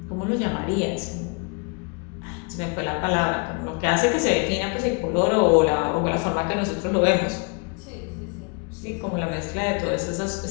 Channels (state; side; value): quieter; right; 32.6 dB